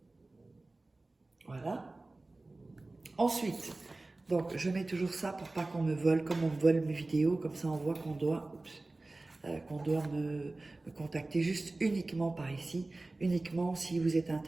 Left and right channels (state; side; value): quieter; left; 3.1 dB